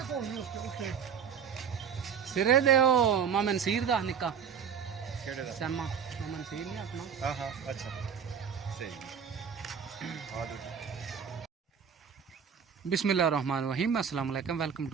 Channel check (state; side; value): quieter; left; 7.4 dB